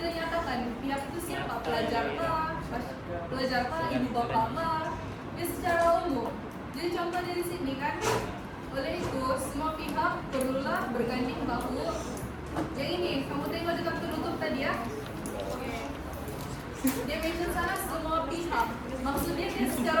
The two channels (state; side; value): identical; both; correlation 1.00